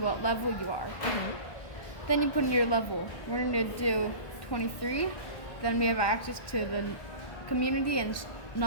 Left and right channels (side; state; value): right; late; 1.6 ms